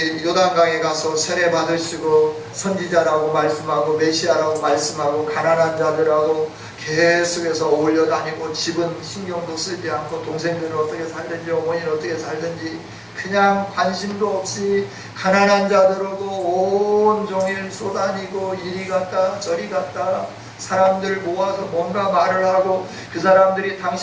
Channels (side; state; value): both; identical; correlation 1.00